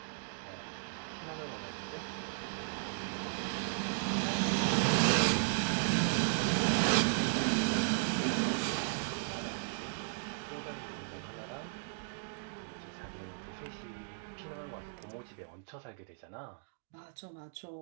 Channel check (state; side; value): silent; left; digital silence